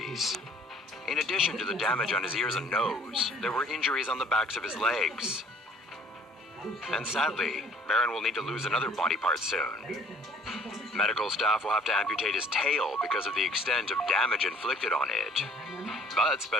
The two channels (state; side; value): normal; both; correlation 0.56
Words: In addition to the damage on his ears and nose, there were injuries on the backs of his legs. And sadly, Baron will need to lose another body part soon. Medical staff will have to amputate his tail because of the extent of damage inflicted on it. But